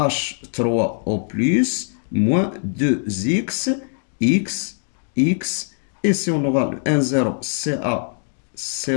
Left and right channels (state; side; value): silent; right; digital silence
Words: moins 2X, X, X, et si on aura le N0